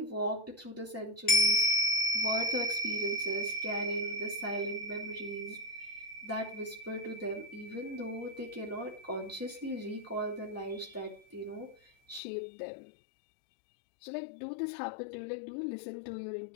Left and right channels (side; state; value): right; drops out; at 12.2 s